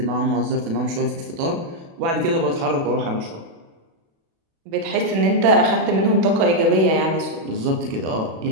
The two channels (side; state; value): left; late; 36 ms